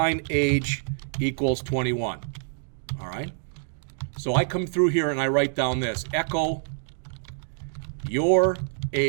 equals 21. All right? So I come through here and I write down this, echo your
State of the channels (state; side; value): silent; left; digital silence